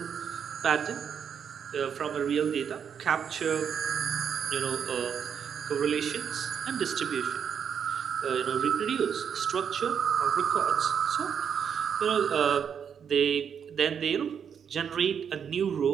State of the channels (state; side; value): quieter; left; 7.6 dB